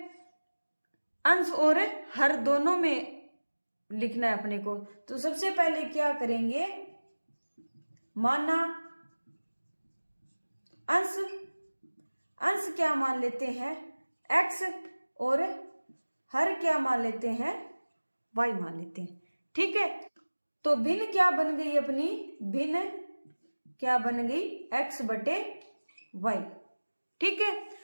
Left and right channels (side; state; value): both; inverted; correlation -1.00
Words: अंश और हर दोनों में लिखना है अपने को। तो सबसे पहले क्या करेंगे, माना अंश क्या मान लेते हैं x और हर क्या मान लेते हैं y मान लेते हैं। ठीक है, तो भिन्न क्या बन गई अपनी, भिन्न क्या बन गई x/y। ठीक है,